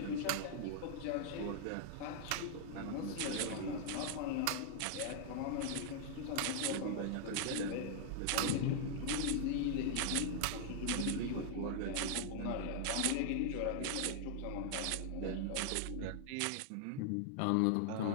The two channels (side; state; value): both; different; correlation 0.00